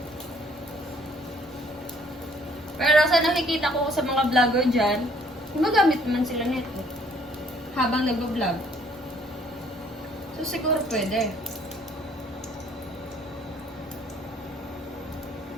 Pero sa nakikita ko sa mga vlogger dyan, gumagamit naman sila nito habang nag-vlog. So siguro pwede.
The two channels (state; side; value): normal; both; correlation 0.61